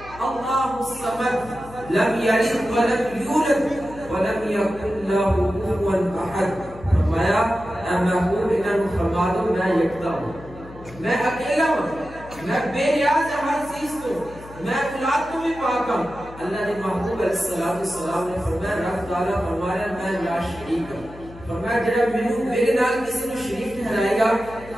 اللہ الصمد لم یلد ولم یولد ولم یکن له کفوا احد. فرمایا اے محبوب انہوں نے فرما دو میں یکتا ہوں، میں اکیلا ہوں، میں بے نیاز ہر چیز کو، میں اولاد کو بھی پاک ہوں. اللہ نے محبوب علیہ السلام نے فرمایا رب تعالیٰ فرمایا میں لا شریک ہوں. فرمایا جڑا میرے نال کسی نے شریک ٹھہرائے گا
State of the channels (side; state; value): left; noise; hum, 18 dB below the sound